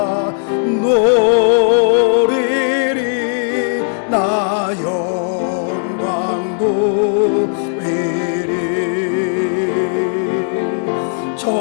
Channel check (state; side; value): silent; right; digital silence